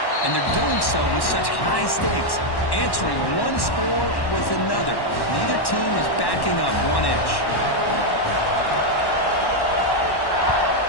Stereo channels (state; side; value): late; right; 1.1 ms